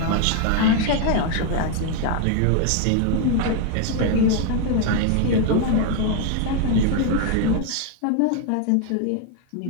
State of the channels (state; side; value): different; both; correlation 0.01